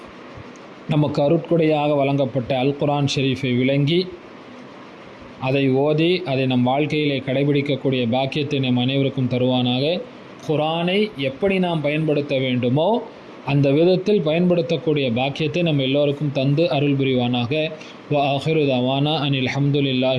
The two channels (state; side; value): identical; both; correlation 1.00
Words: நமக்கு அருட்கொடையாக வழங்கப்பட்ட அல் குர்ஆன் ஷெரீஃபை விளங்கி அதை ஓதி அதை நம் வாழ்க்கையிலே கடைபிடிக்கக்கூடிய பாக்கியத்தை நம் அனைவருக்கும் தருவானாக. குர்ஆனை எப்படி நாம் பயன்படுத்த வேண்டுமோ அந்த விதத்தில் பயன்படுத்தக்கூடிய பாக்கியத்தை நம்ம எல்லோருக்கும் தந்து அருள் புரிவானாக. வ ஆஹிரு தவானா அனில்